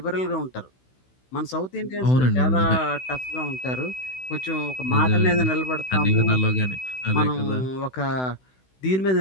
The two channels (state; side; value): late; right; 16 ms